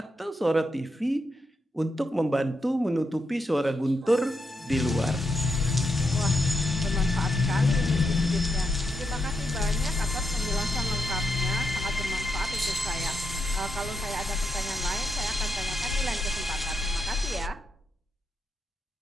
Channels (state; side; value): normal; both; correlation 0.82